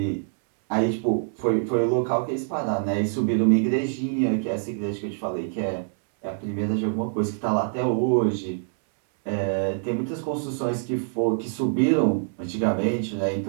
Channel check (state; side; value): silent; left; 62 dB below the other